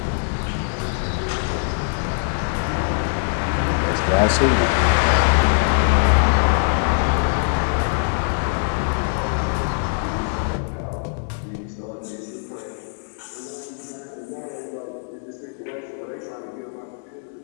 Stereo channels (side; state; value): right; silent; digital silence